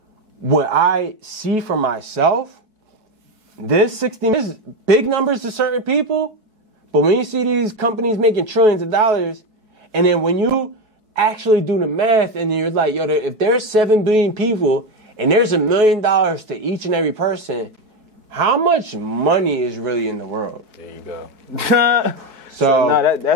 what I see for myself, this 60 is big numbers to certain people, but when you see these companies making trillions of dollars, and then when you actually do the math and you're like, if there's 7 billion people and there's $1 million to each and every person, how much money is really in the world? There you go. So no,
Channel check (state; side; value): late; left; 4.7 ms